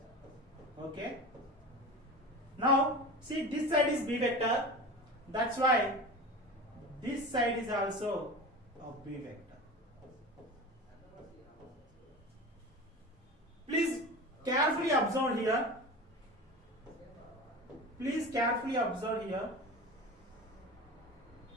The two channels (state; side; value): normal; both; correlation 0.31